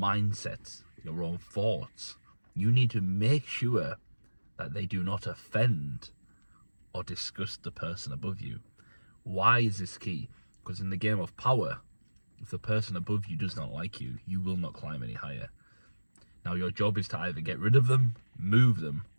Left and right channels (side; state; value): both; inverted; correlation -1.00